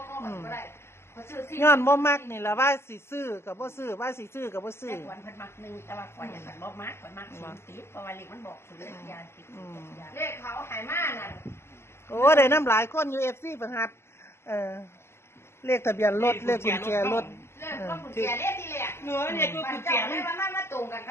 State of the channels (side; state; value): right; late; 0.12 ms